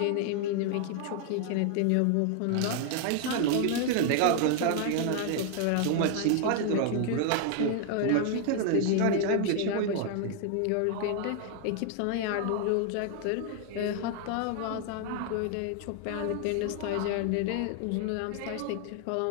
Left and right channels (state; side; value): different; both; correlation 0.00